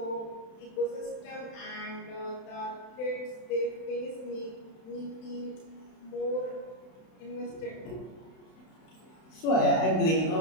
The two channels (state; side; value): late; right; 31 ms